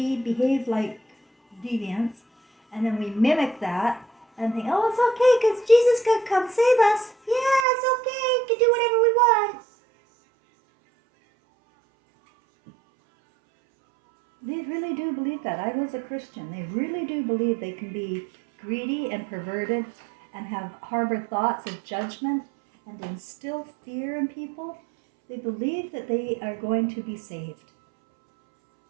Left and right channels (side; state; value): left; drops out; at 7.7 s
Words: behave like deviants, and then we mimic that and think, oh, it's okay because Jesus could come save us. Yeah, it's okay. We can do whatever we want. They really do believe that. I was a Christian. They really do believe they can be greedy and perverted and harbor thoughts of judgment and instill fear in people. They believe that they are going to be saved.